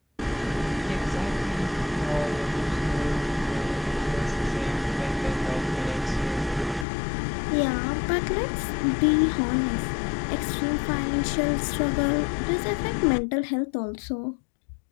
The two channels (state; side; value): drops out; right; at 6.9 s